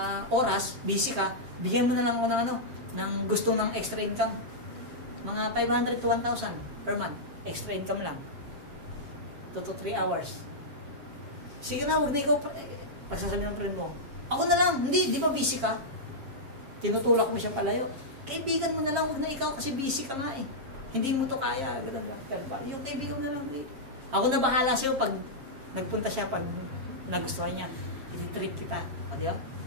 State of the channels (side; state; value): left; late; 7.5 ms